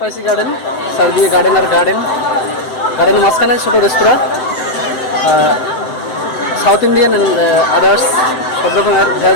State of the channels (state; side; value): late; right; 7.9 ms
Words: গার্ডেন, চারদিকে গার্ডেনের মাঝখানে ছোট রেস্তোরাঁ, সাউথ ইন্ডিয়ান অ্যান্ড আদার্স সব রকমের